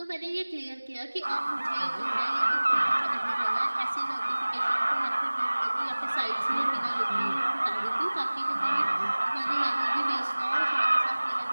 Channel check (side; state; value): both; inverted; correlation -1.00